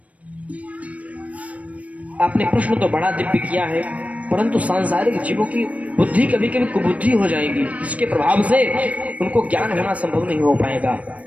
आपने प्रश्न तो बड़ा दिव्य किया है, परंतु सांसारिक जीवों की बुद्धि कभी कभी कुबुद्धि हो जाएगी, जिसके प्रभाव से उनको ज्ञान होना संभव नहीं हो पाएगा।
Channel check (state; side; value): late; left; 0.067 ms